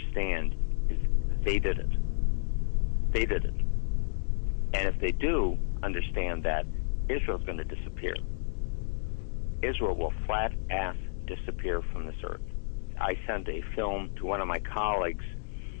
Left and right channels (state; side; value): silent; right; digital silence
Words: is they did it. They did it. And if they do understand that, Israel's going to disappear. Israel will flat-ass disappear from this earth. I sent a film to one of my colleagues,